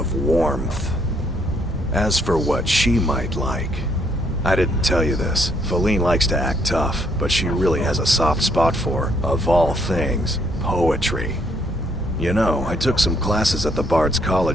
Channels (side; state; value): both; normal; correlation 0.70